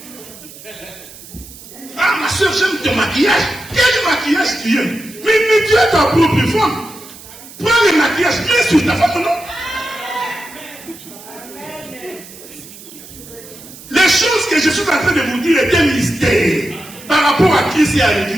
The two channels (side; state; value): right; noise; hiss, 18 dB below the sound